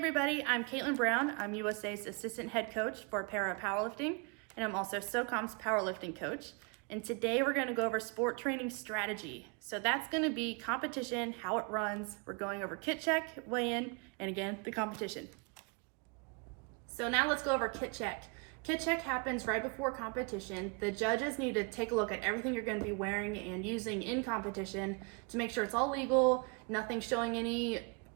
I'm Caitlin Brown. I'm USA's Assistant Head Coach for Para Powerlifting, and I'm also SOCOM's Powerlifting Coach. And today we're going to go over sport training strategy. So that's going to be competition, how it runs. We're going over kit check, weigh-in, and again, the competition. So now let's go over kit check. Kit check happens right before competition. The judges need to take a look at everything you're going to be wearing and using in competition to make sure it's all legal, nothing showing any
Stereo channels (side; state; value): left; quieter; 33.7 dB